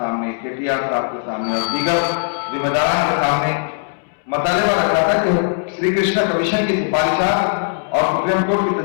KTR صاحب کے سامنے اور دیگر ذمہ داران کے سامنے مطالبہ رکھا تھا کہ شری کرشنا کمیشن کی سفارشات اور سپریم کورٹ کی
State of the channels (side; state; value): right; silent; 67 dB below the other